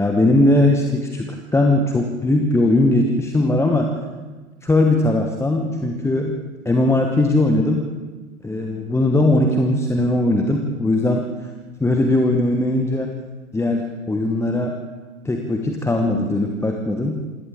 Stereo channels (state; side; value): normal; both; correlation 0.65